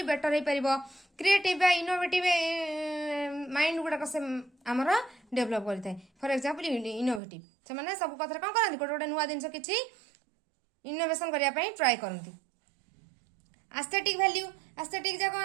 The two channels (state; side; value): drops out; left; at 7.2 s